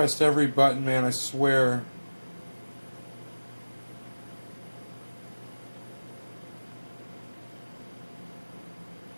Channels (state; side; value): inverted; both; correlation -1.00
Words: every button, man, I swear.